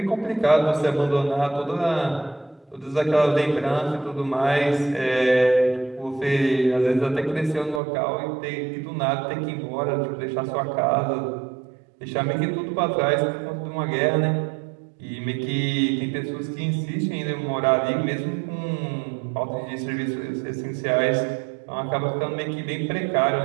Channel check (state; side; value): drops out; left; at 7.8 s